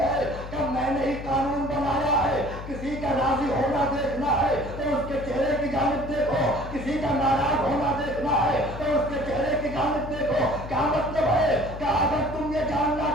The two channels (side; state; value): left; noise; hum, 11 dB below the sound